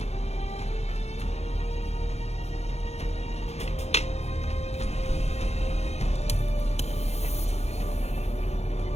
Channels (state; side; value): late; right; 0.31 ms